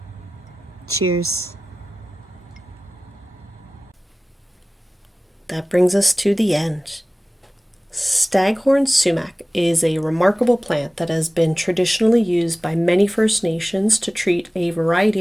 Cheers. That brings us to the end. Staghorn sumac is a remarkable plant that has been traditionally used by many First Nations to treat a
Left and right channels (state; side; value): normal; both; correlation 0.97